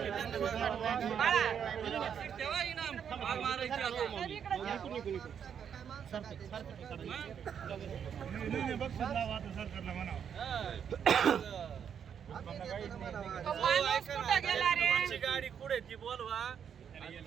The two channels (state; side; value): quieter; left; 8.0 dB